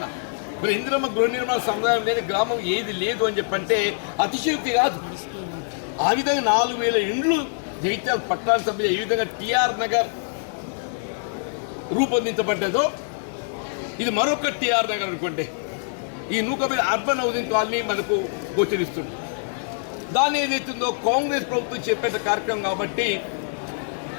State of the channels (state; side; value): silent; right; digital silence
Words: మరి ఇందిరమ్మ గృహ నిర్మాణ సముదాయం లేని గ్రామం ఏది లేదు అని చెప్పంటే అతిశయోక్తి కాదు. ఆ విధంగా 4,000 ఇండ్లు జగిత్యాల పట్టణ సభ ఈ విధంగా టిఆర్ నగర్ రూపొందించబడ్డదో ఇది మరొక టిఆర్ నగర్ అనుకోండి. ఈ నూకపల్లి అర్బన్ హౌసింగ్ కాలనీ మనకు గోచరిస్తుంది. దాన్ని ఏదైతుందో కాంగ్రెస్ ప్రభుత్వం చెప్పేట కార్యక్రమం కాబట్టి